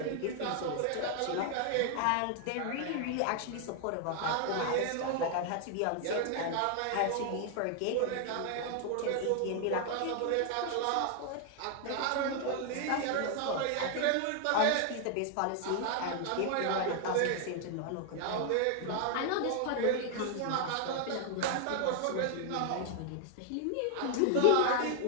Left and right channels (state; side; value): different; both; correlation 0.00